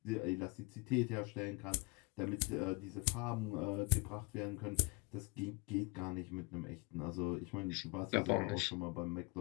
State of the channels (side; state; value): right; quieter; 27.0 dB